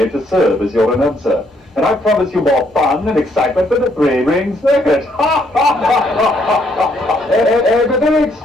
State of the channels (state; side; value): normal; both; correlation 0.71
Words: to serve as your announcer. And I promise you more fun and excitement than the three-ring circuit. A very